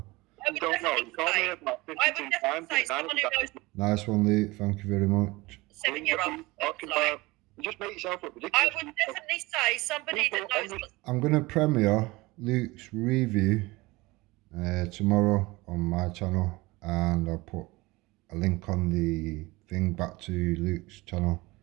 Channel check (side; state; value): left; quieter; 21.9 dB